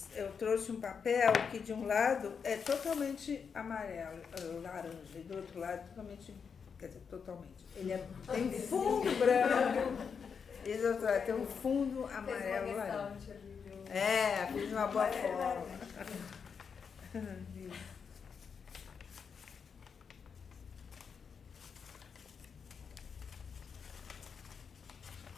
Eu trouxe um papel que de um lado é totalmente amarelo, laranja, e do outro lado totalmente, quer dizer, totalmente. Ele tem um fundo branco, e do outro lado tem um fundo amarelo laranja. Fiz uma boa forma.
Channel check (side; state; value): right; quieter; 6.3 dB